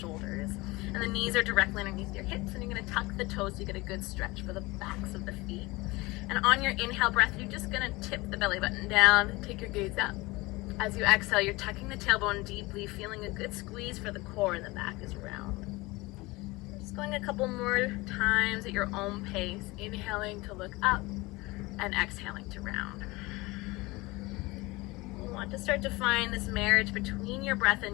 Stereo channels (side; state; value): right; quieter; 22.4 dB